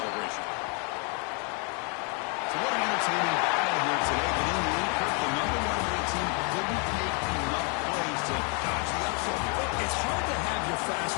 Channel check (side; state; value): right; quieter; 36.5 dB